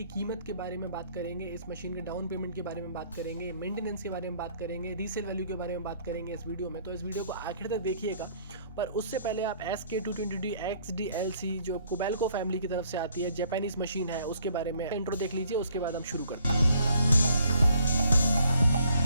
कीमत के बारे में बात करेंगे, इस मशीन के डाउन पेमेंट के बारे में बात करेंगे, मेंटेनेंस के बारे में बात करेंगे, रीसेल वैल्यू के बारे में बात करेंगे इस वीडियो में। तो इस वीडियो को आखिर तक देखिएगा। पर उससे पहले आप SK220D XDLC जो कोबेल्को फैमिली की तरफ से आती है, जापानीज मशीन है, उसके बारे में इंट्रो देख लीजिए, उसके बाद हम शुरू करते हैं।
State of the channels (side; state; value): both; inverted; correlation -0.63